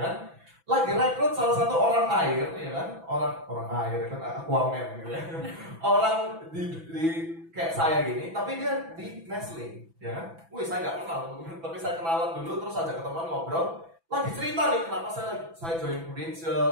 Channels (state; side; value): late; left; 6.0 ms